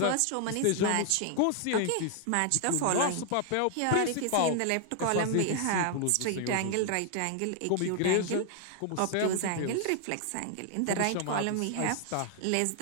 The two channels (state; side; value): different; both; correlation 0.00